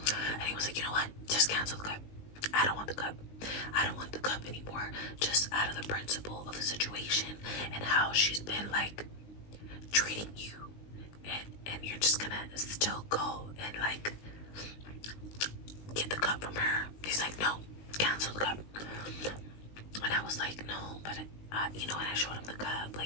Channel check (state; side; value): late; right; 19 ms